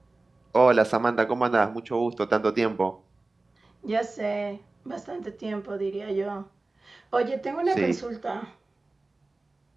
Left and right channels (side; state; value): left; quieter; 3.2 dB